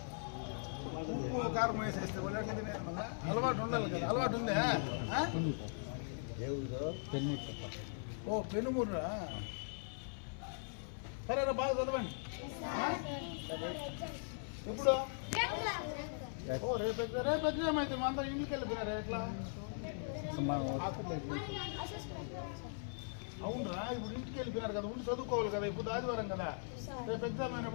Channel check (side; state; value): right; silent; 51 dB below the other